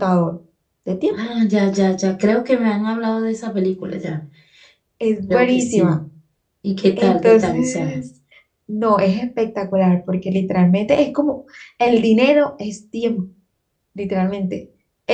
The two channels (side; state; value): both; identical; correlation 1.00